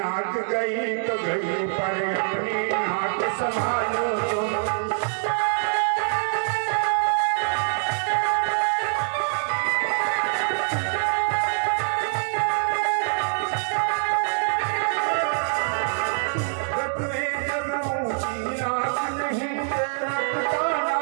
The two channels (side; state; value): left; silent; digital silence